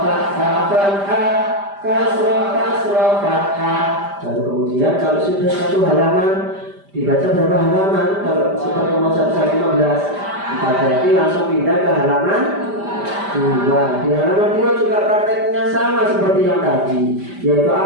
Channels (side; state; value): left; late; 5.0 ms